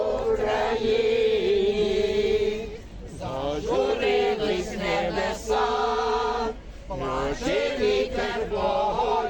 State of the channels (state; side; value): identical; both; correlation 1.00